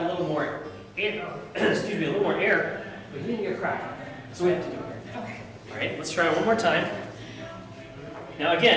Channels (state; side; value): identical; both; correlation 1.00